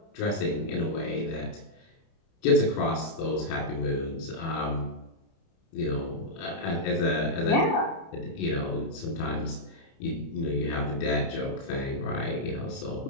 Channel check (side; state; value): right; late; 30 ms